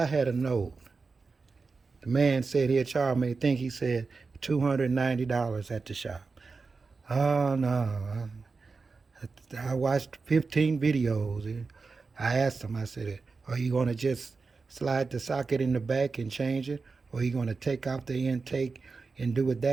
had a note, the man said he'd charge me, I think he said $290 at the shop. Oh no, I watched 15 videos. I asked him, I said, are you going to just slide the socket in the back and change it? Or are you going to take off the intake and do it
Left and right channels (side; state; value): left; quieter; 4.4 dB